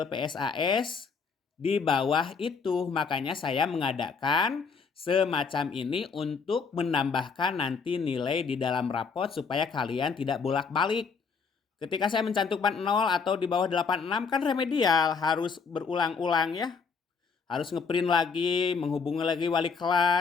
PSAS di bawah itu. Makanya saya mengadakan semacam ini untuk menambahkan nanti nilai di dalam rapot supaya kalian tidak bolak-balik. Ketika saya mencantumkan 0 atau di bawah 86 kan remedial, harus berulang-ulang ya. Harus ngeprint lagi, menghubungi lagi wali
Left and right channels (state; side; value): quieter; right; 5.3 dB